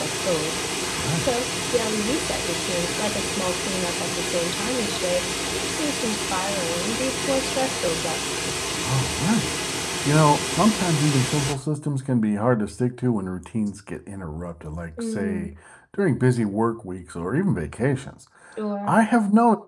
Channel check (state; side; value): identical; both; correlation 1.00